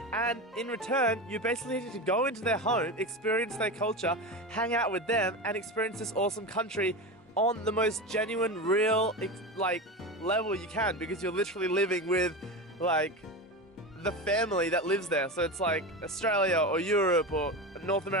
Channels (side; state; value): both; normal; correlation 0.22